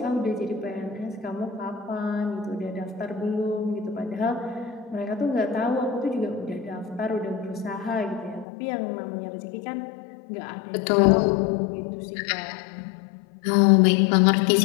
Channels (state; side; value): drops out; right; at 8.5 s